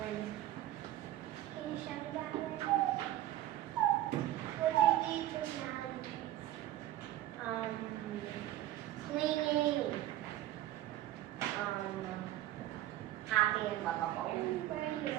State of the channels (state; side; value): quieter; left; 14.0 dB